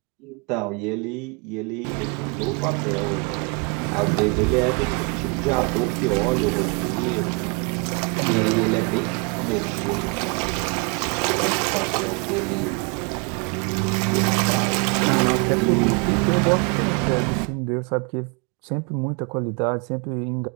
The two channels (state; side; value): quieter; left; 31.9 dB